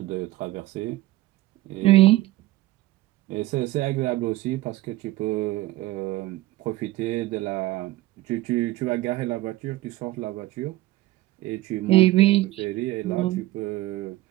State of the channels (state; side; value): quieter; left; 17.4 dB